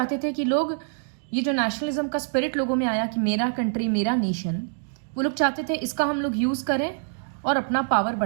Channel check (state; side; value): silent; left; digital silence